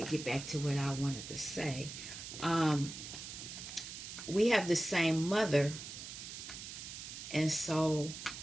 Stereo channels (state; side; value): noise; right; hiss, 10 dB below the sound